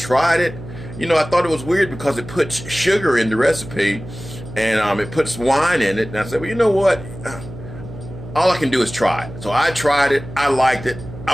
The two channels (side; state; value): right; noise; hum, 13 dB below the sound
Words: it. You know, I thought it was weird because it puts sugar in the recipe, and it puts wine in it. And I said, well, you know what? All I can do is try it. So I tried it. I liked it.